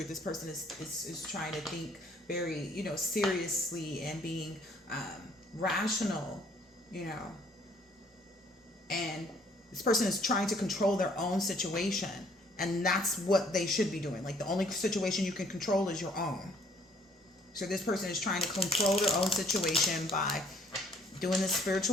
This person is trying to think very, seriously and being rational, and this person is trying to control their own situation. And that's what they should be doing. Like, the only situation you can control is your own. So this person is trying to control their own situation by doing this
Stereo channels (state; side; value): normal; both; correlation 0.61